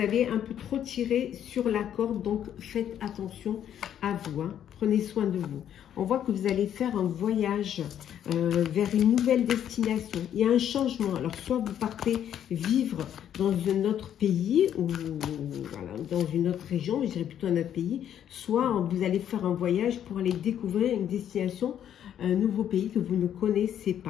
un peu trop tiré sur la corde, donc faites attention à vous, prenez soin de vous. On voit que vous allez faire un voyage vers une nouvelle destination. Il y a un changement. Alors, soit vous partez vivre dans un autre pays, ou voilà, dans une autre région, je dirais plutôt un autre pays, soit vous allez faire un voyage pour aller découvrir une destination, un nouveau pays que vous ne connaissez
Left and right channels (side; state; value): right; quieter; 10.0 dB